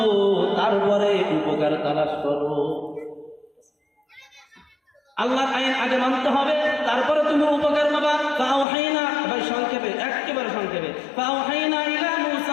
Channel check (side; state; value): right; drops out; at 8.7 s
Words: তারপরে উপকার তালাশ করো। আল্লাহর আইন আগে মানতে হবে, তারপরে তুমি উপকার পাবা। ফাওহাইনা, ভাই সংক্ষেপে, একেবারে সংক্ষেপে, ফাওহাইনা ইলা